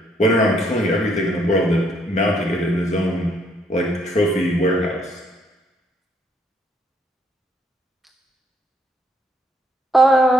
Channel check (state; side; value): normal; both; correlation 0.69